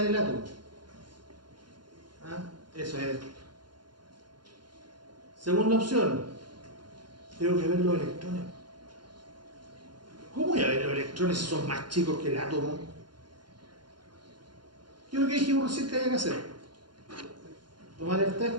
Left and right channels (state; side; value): late; left; 0.71 ms